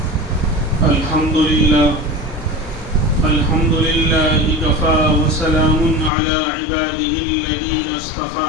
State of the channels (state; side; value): drops out; right; at 6.1 s